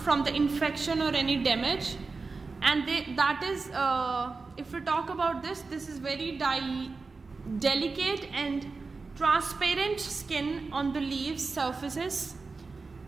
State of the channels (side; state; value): left; quieter; 4.2 dB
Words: the infection or any damage, and if we talk about this is very delicate and transparent skin on the leaves surfaces